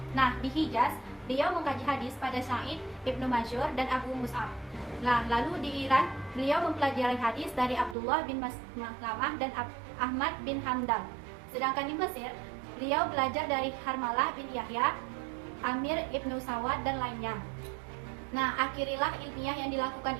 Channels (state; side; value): drops out; left; at 8.0 s